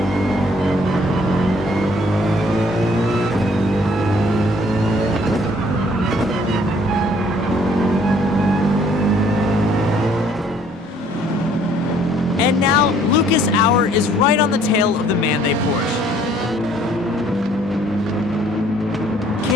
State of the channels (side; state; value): both; normal; correlation 0.60